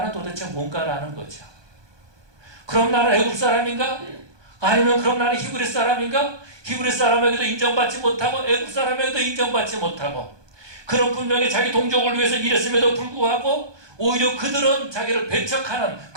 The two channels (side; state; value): left; late; 1.2 ms